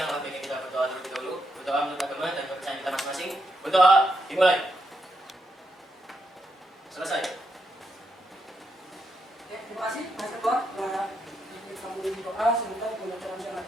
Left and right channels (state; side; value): normal; both; correlation 0.81